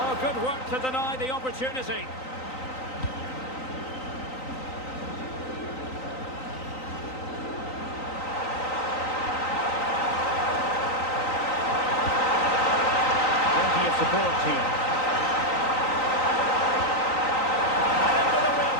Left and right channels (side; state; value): right; late; 3.9 ms